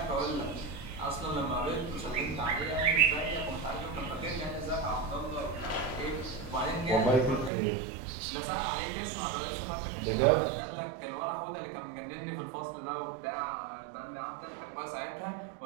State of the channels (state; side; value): drops out; left; at 7.5 s